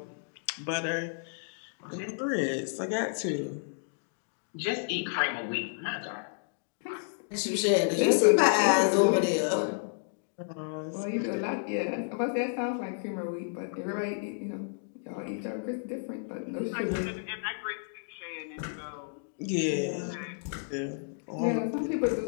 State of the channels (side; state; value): right; silent; digital silence